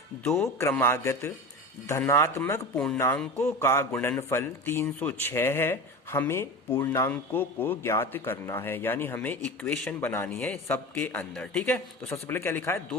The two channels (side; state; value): both; normal; correlation 0.29